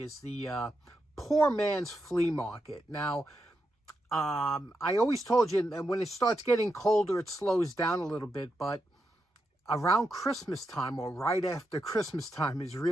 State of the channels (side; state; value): both; normal; correlation 0.85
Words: is the poor man's flea market. Now, I always told you that when it starts getting colder, it slows down a little bit, but around Christmas time or right after Christmas time is